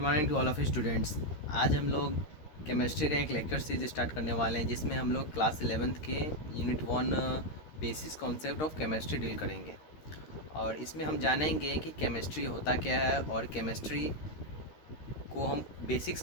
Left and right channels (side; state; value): right; late; 13 ms